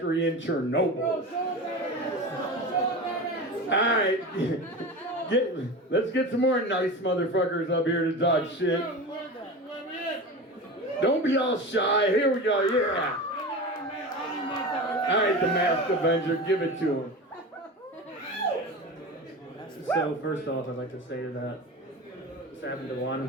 in Chernobyl. Alright, let's get some more nice motherfuckers up here to talk shit. Don't be all shy. Here we go, yeah. Alright, the Masked Avenger, give it to him. So first off, I'd like to say that Sam and DuJuan,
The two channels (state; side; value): normal; both; correlation 0.29